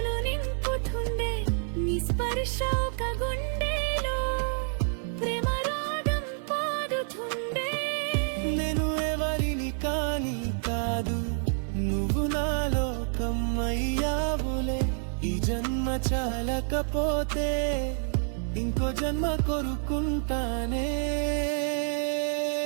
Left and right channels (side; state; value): left; silent; digital silence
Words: నింపుతుండే. నీ స్పర్శ ఒక గుండెలో ప్రేమ రాగం పాడుతుండే. నేను ఎవరిని కాని కాదు, నువ్వు నా లోకం అయ్యావులే. ఈ జన్మ చాలకపోతే ఇంకో జన్మ కోరుకుంటానే.